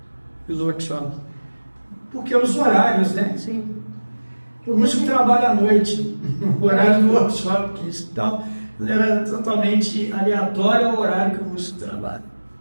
no workshop. Porque os horários, né? Sim. O músico trabalha à noite, o horário do workshop, então era totalmente aleatório ao horário que o músico trabalha.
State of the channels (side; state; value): both; inverted; correlation -1.00